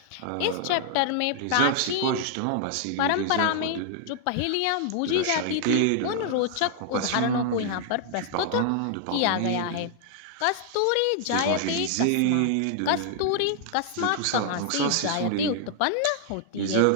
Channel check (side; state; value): both; different; correlation -0.01